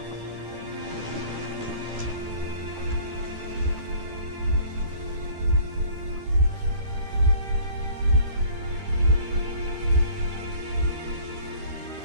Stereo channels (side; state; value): left; late; 13 ms